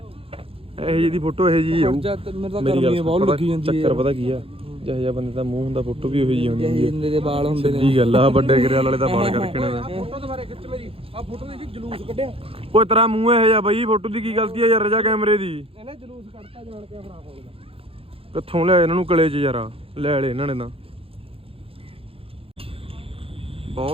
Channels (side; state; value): left; late; 0.27 ms